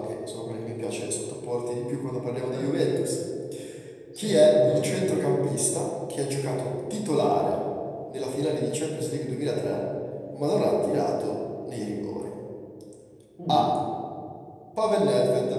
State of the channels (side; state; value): both; identical; correlation 1.00